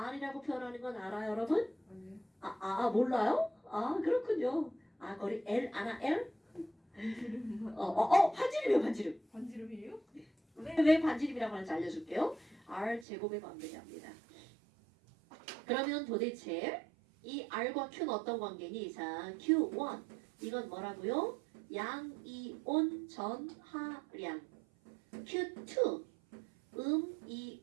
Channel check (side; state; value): left; drops out; at 13.1 s